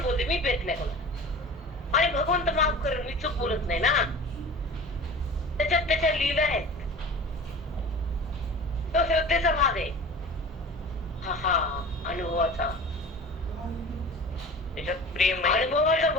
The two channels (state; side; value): normal; both; correlation 0.38